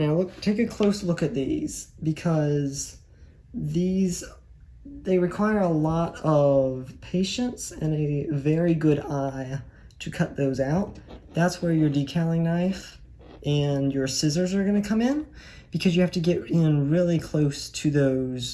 take a close look at these, because they require a lot of patience and a very good eye to cut those out. That's where your decaling knife and your scissors are going to come in, because you have to get in really close to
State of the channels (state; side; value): identical; both; correlation 1.00